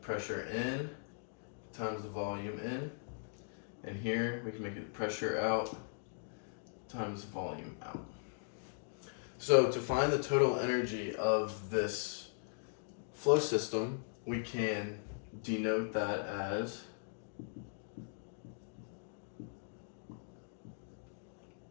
pressure in times the volume in. And here we can make it pressure out times volume out. So to find the total energy of this flow system, we can denote that as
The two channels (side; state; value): right; silent; digital silence